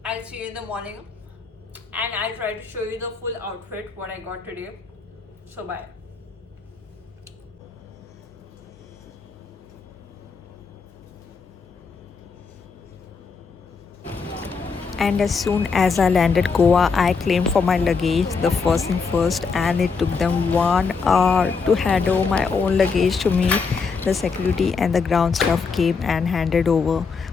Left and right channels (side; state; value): right; quieter; 5.1 dB